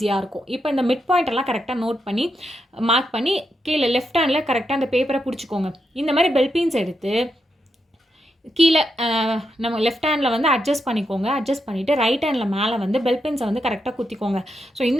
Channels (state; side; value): normal; both; correlation 0.84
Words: இருக்கும். இப்போ இந்த மிட் பாயிண்ட் எல்லாம் கரெக்டாக நோட் பண்ணி மார்க் பண்ணி கீழே லெஃப்ட் ஹேண்டில் கரெக்டாக அந்த பேப்பரை பிடிச்சிக்கோங்க. இந்த மாதிரி பெல் பீன்ஸ் எடுத்து கீழே நம்ம லெஃப்ட் ஹேண்டில் வந்து அட்ஜஸ்ட் பண்ணிக்கோங்க. அட்ஜஸ்ட் பண்ணிவிட்டு ரைட் ஹேண்டில் மேலே வந்து பெல் பென்ஸை வந்து கரெக்டாக குத்திக்கோங்க. ஸோ